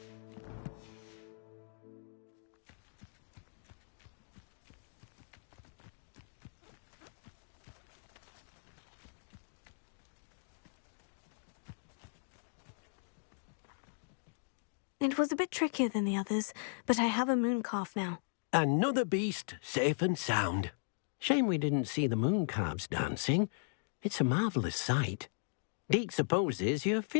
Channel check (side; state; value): right; silent; digital silence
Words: It was a bit trickier than the others, but I have a moon calf now. Another beast, safe and sound. Shame we didn't see the moon calves dancing. It's a marvellous sight. Deke supposes you're